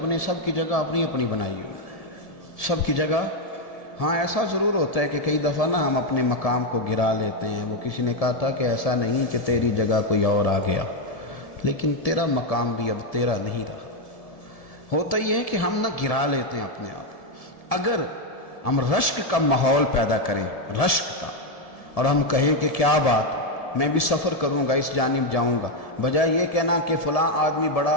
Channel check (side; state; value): right; late; 1.7 ms